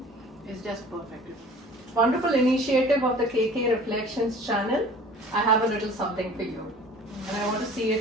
is just perfect. Wonderful initiative of the KK Reflections channel. I have a little something for you. And I want to see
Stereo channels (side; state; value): both; normal; correlation 0.46